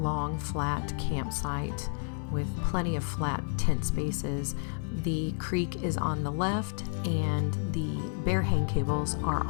flat campsite with plenty of flat tent spaces. The creek is on the left and the bear hang cables are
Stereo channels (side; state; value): right; silent; 55 dB below the other